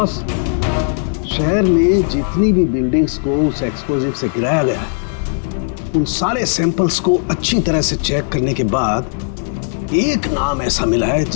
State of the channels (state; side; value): silent; right; digital silence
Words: शहर में जितनी भी बिल्डिंग्स को उस एक्सप्लोजिव से गिराया गया है, उन सारे सैंपल्स को अच्छी तरह से चेक करने के बाद एक नाम ऐसा मिला है